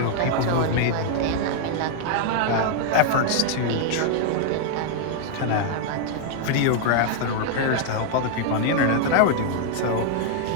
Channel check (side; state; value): both; different; correlation 0.00